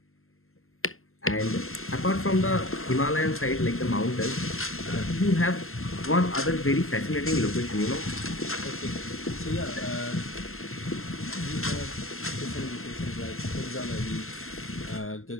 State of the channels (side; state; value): right; late; 0.62 ms